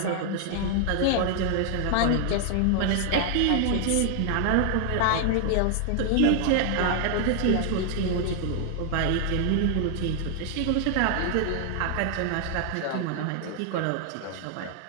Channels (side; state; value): both; different; correlation 0.00